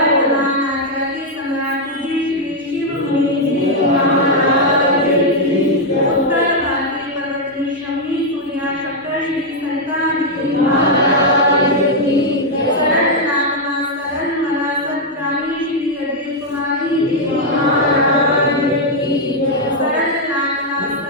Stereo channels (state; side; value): normal; both; correlation -0.01